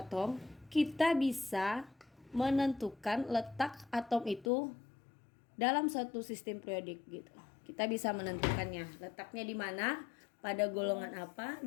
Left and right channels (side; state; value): right; drops out; at 4.5 s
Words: kita bisa menentukan letak atom itu dalam suatu sistem periodik gitu. Kita bisa menentukannya, letaknya di mana, pada golongan apa,